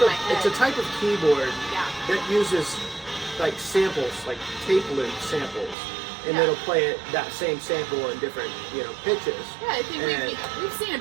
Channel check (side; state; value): left; drops out; at 5.8 s